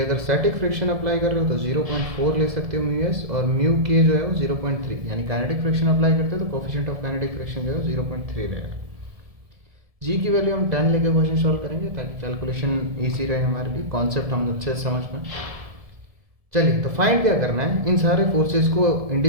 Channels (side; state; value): left; late; 1.7 ms